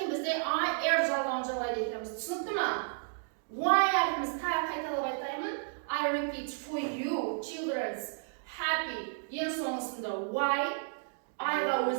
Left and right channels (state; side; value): silent; left; digital silence